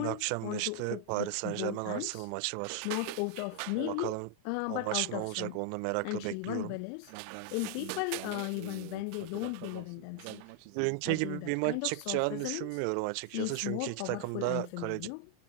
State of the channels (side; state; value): both; different; correlation 0.00